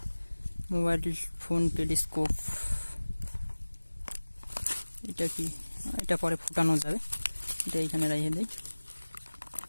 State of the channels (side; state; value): both; inverted; correlation -1.00